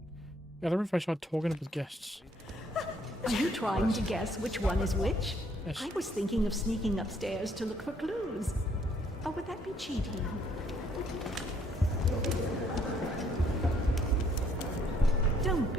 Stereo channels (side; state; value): both; normal; correlation 0.67